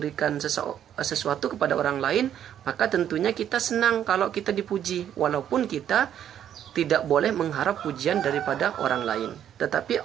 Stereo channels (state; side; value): quieter; left; 10.1 dB